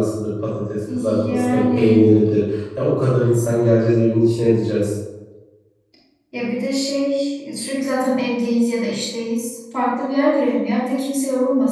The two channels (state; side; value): identical; both; correlation 1.00